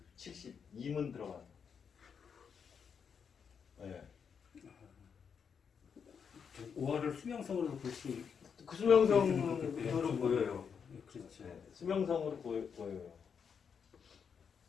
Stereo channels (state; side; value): quieter; right; 6.7 dB